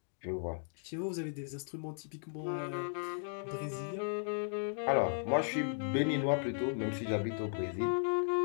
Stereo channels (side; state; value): right; silent; digital silence